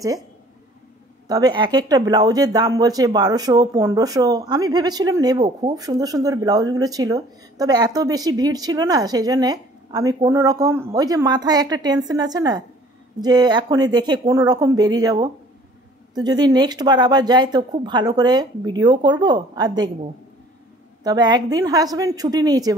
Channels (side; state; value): both; normal; correlation 0.53